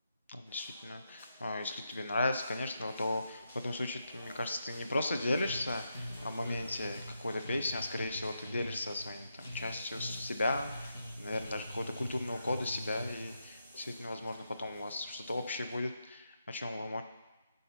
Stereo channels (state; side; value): inverted; both; correlation -0.84